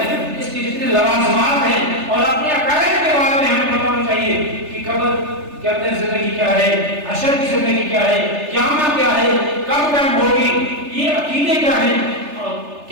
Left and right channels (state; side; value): late; left; 3.3 ms